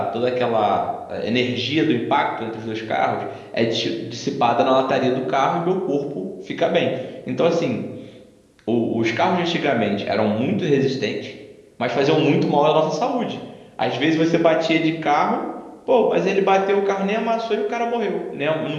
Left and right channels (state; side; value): identical; both; correlation 1.00